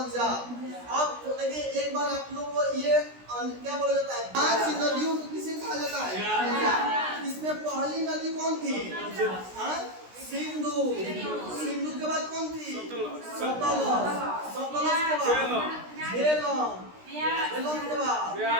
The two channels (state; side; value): late; left; 16 ms